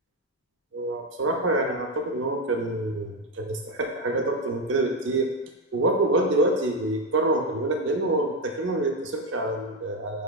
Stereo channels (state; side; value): normal; both; correlation 0.09